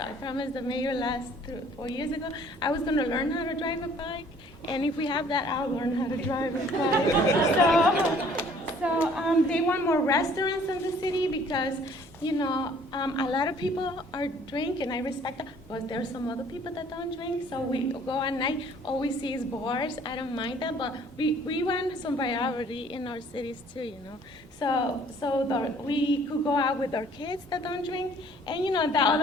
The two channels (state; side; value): normal; both; correlation 0.57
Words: promised the mayor 4 years ago I was going to learn how to drive a bike, and if we have that, I'll learn how to drive a bike. So they want more restaurants in the city because, a lot of people are drinking. I respect that, but there's some other people that don't drink. So we go at night, all we see is bars. I don't mind that, but we want some variety in our cities too, So we could go out with our kids that don't drink, and the